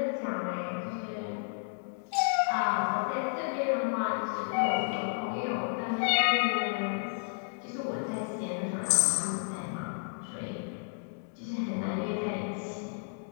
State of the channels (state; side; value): silent; right; digital silence